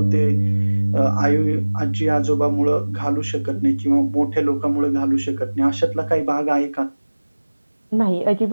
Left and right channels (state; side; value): inverted; both; correlation -1.00